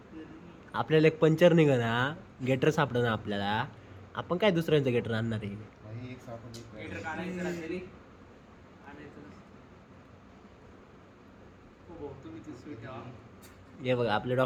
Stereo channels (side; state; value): both; identical; correlation 1.00